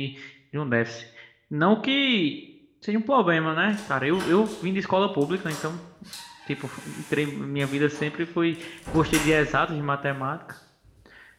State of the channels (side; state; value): both; identical; correlation 1.00